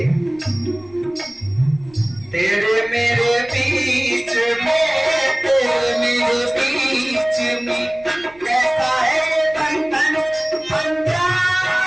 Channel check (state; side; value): noise; right; rumble, 26 dB below the sound